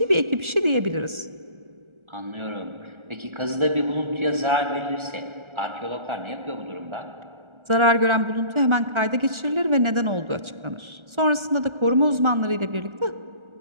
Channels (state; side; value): late; left; 1.4 ms